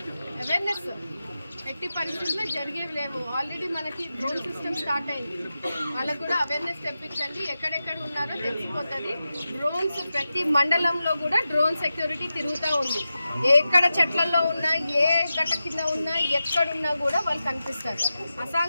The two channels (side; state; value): both; inverted; correlation -0.92